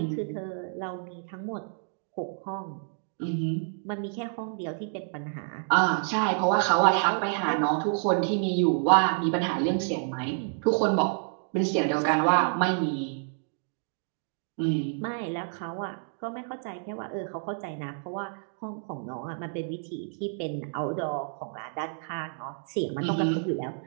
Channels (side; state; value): left; silent; 59 dB below the other